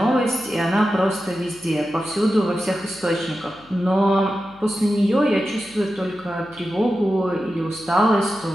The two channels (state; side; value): noise; left; hum, 26 dB below the sound